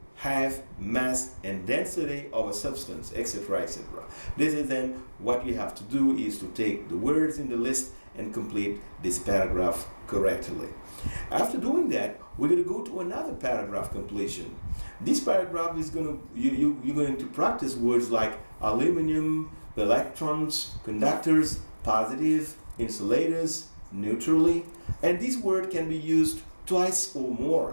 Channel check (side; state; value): both; inverted; correlation -1.00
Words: height, mass, and density of a substance, etc., etc. This is then what you have to do is to take the words in the list and complete this paragraph correctly. After doing that, we're going to go to another paragraph completion. This paragraph is you're going to practice words like aluminum, electrons, conductors, positive, insulators, neutrally, and this word can be used twice or